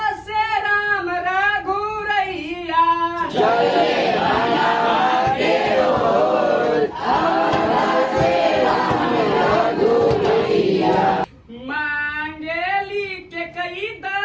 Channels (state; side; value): identical; both; correlation 1.00